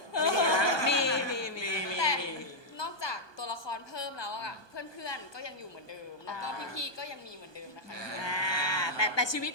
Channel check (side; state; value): right; late; 1.2 ms